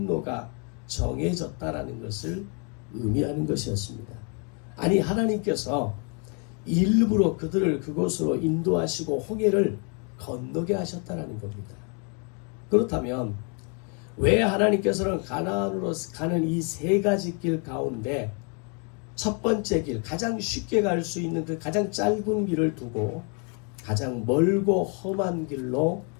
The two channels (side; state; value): right; quieter; 37.5 dB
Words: 정해졌다라는 것을 의미하는 것이었습니다. 아니, 하나님께서 일부러 그들을 그곳으로 인도하시고 홍해를 건너게 하셨다는 겁니다. 그렇다면 왜 하나님께서는 가나안으로 가는 이 세 가지 길 가운데 첫 번째 길, 가장 쉽게 갈 수 있는 그 가장 짧은 길을 두고 가장 멀고 험한 길로